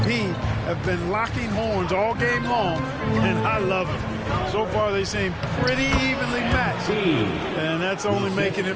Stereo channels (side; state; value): both; identical; correlation 1.00